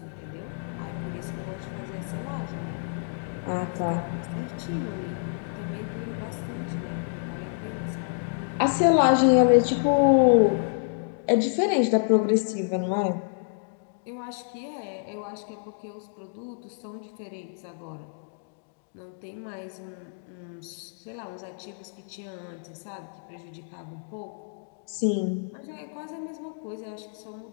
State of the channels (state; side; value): silent; right; digital silence